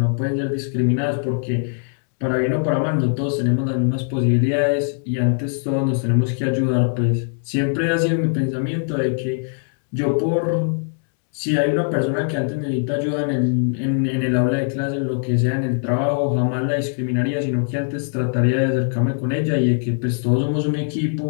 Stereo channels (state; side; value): silent; right; 65 dB below the other